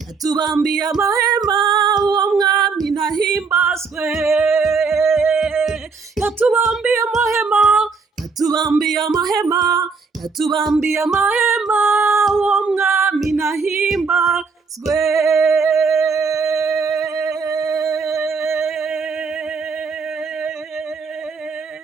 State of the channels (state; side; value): quieter; left; 4.9 dB